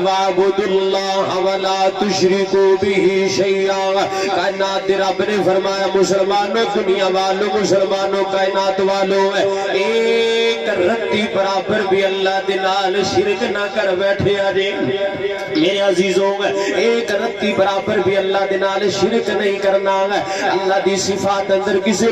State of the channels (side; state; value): both; identical; correlation 1.00